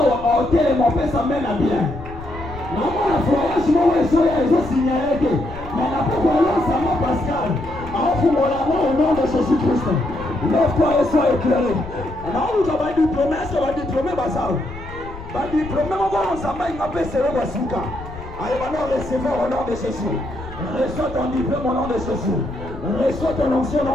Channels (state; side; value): noise; left; rumble, 14 dB below the sound